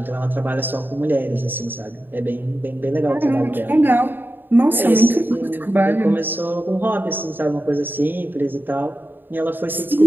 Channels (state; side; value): late; left; 0.094 ms